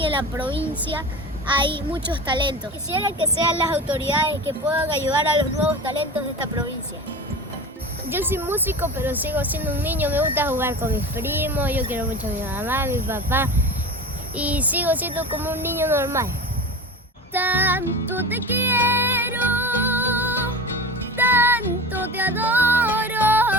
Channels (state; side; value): normal; both; correlation 0.31